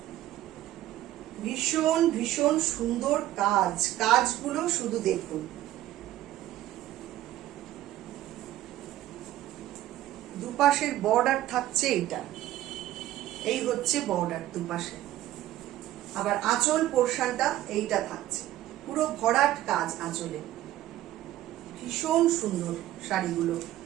ভীষণ ভীষণ সুন্দর কাজ, কাজগুলো শুধু দেখুন। দুপাশের বর্ডার থাকছে এইটা, এই হচ্ছে বর্ডার দুপাশে, আবার আঁচল পোর্শনটা এইটা থাকছে, পুরো ভরাট কাজ আঁচলে। ভীষণ সুন্দর শাড়িগুলো,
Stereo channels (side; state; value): left; quieter; 14.3 dB